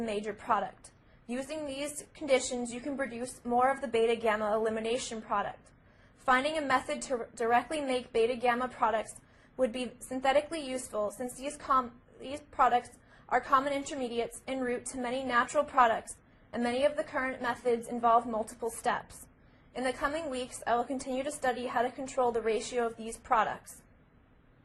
major product. Using these conditions, you can produce more of the beta-gamma elimination product. Finding a method to directly make beta-gamma products would be synthetically useful, since these products are common intermediates en route to many natural products, and many of the current methods involve multiple steps. In the coming weeks, I will continue to study how to control the ratio of these products.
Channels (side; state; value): both; identical; correlation 1.00